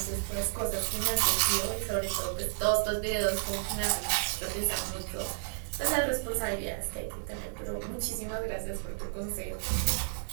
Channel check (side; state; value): left; silent; digital silence